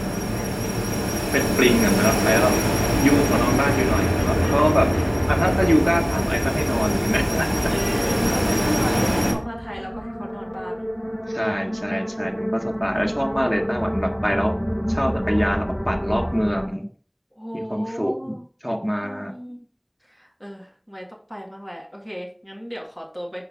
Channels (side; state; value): both; identical; correlation 1.00